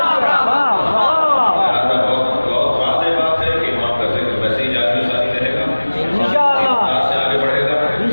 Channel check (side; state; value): both; inverted; correlation -1.00